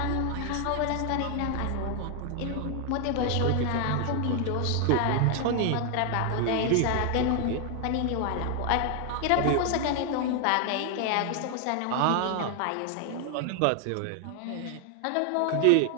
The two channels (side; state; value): both; different; correlation 0.00